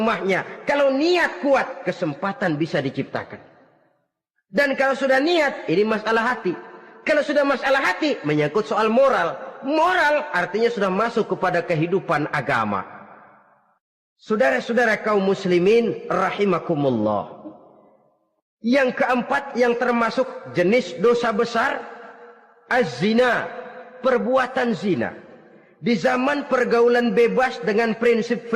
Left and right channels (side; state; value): both; identical; correlation 1.00